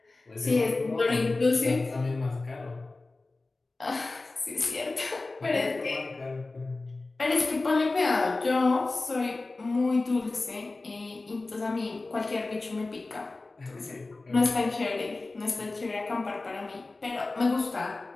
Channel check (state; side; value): quieter; right; 3.3 dB